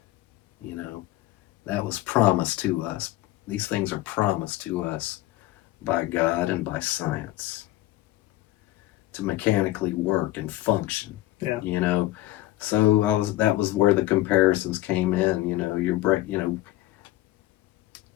That was promised to us. These things are promised to us by God and by science to mechanically work and function. Yeah. So that was where the comparisons came in.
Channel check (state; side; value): quieter; right; 16.4 dB